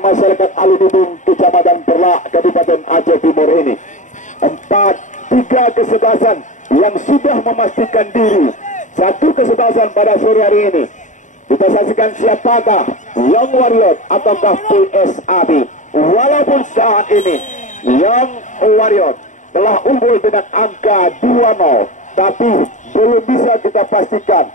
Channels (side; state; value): right; late; 0.36 ms